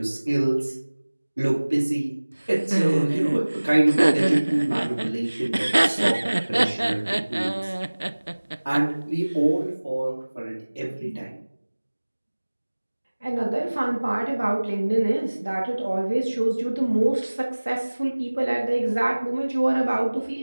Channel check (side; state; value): both; inverted; correlation -1.00